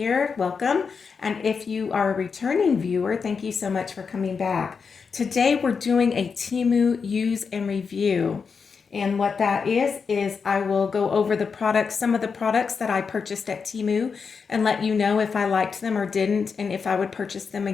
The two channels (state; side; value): quieter; right; 5.6 dB